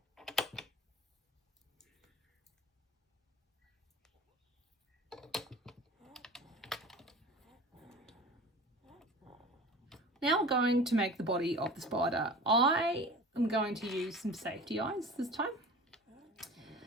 Now we're going to make the body of the spider. I am going to use some safety eyes this time.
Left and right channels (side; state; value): both; normal; correlation 0.38